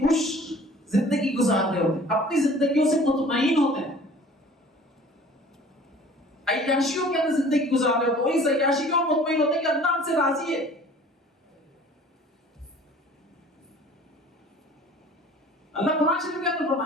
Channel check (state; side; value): normal; both; correlation 0.48